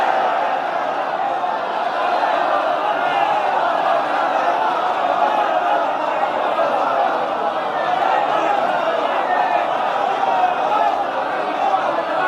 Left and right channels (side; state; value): both; identical; correlation 1.00